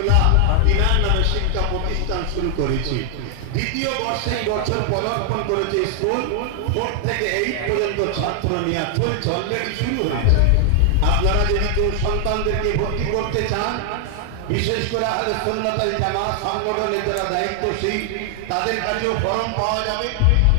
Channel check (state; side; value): different; both; correlation 0.00